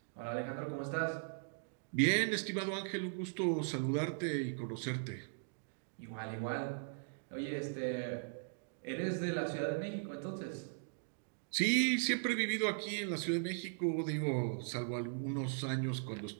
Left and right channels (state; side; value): silent; left; digital silence